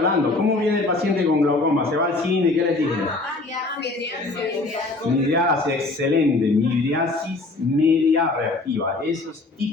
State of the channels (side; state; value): right; quieter; 3.2 dB